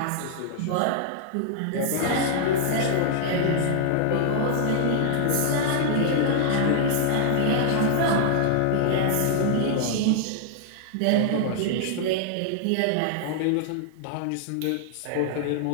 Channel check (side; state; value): both; different; correlation -0.01